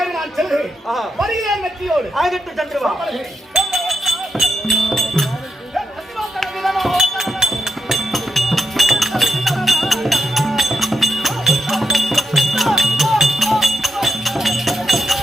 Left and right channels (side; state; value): both; normal; correlation 0.84